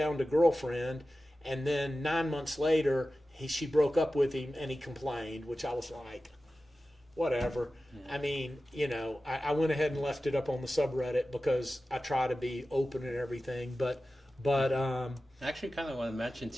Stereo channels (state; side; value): normal; both; correlation 0.95